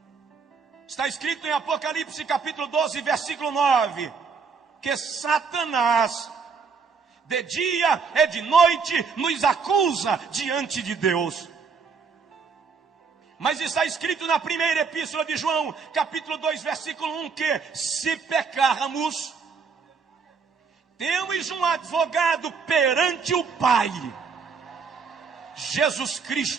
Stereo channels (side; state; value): left; quieter; 5.4 dB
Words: Está escrito em Apocalipse capítulo 12, versículo 9, que Satanás, de dia e de noite, nos acusa diante de Deus. Mas está escrito na primeira epístola de João, capítulo 2, versículo 1, que se pecarmos, Temos um advogado perante o Pai, Jesus